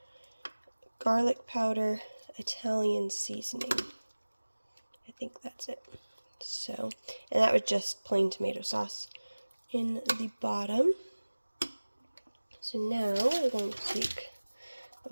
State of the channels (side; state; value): both; inverted; correlation -1.00